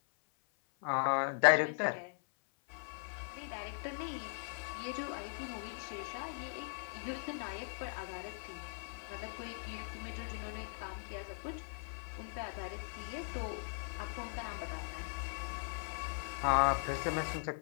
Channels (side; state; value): right; silent; 51 dB below the other